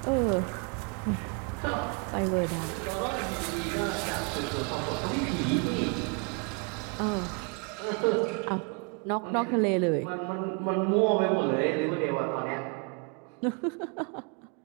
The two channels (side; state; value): left; quieter; 35.0 dB